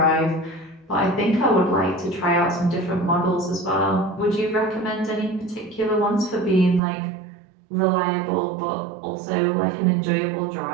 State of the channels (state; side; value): drops out; left; at 6.8 s